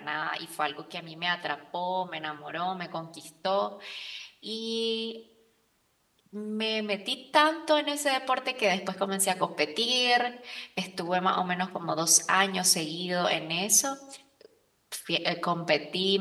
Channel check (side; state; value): both; identical; correlation 1.00